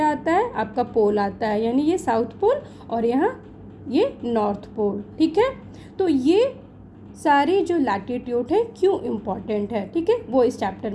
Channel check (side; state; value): both; identical; correlation 1.00